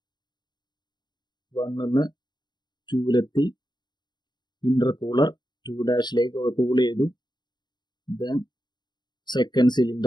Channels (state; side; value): late; right; 0.21 ms